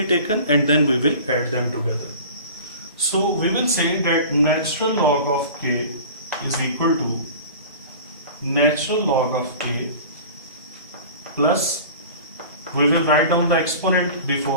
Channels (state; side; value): inverted; both; correlation -0.40